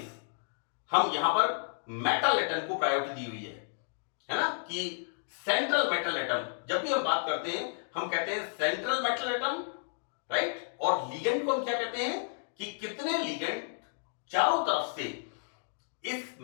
हम यहां पर मेटल एटम को प्रायोरिटी दी हुई है ना, कि सेंट्रल मेटल एटम, जब भी हम बात करते हैं हम कहते हैं सेंट्रल मेटल एटम, राइट। और लिगेंड को हम क्या कहते हैं कि कितने लिगेंड चारों तरफ से इस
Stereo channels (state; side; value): silent; right; digital silence